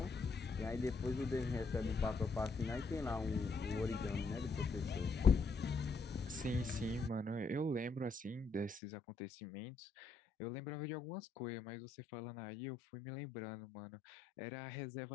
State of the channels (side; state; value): right; drops out; at 8.8 s